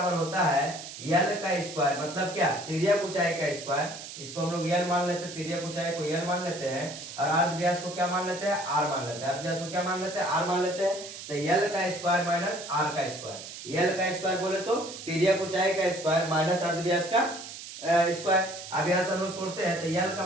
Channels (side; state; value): right; noise; hiss, 12 dB below the sound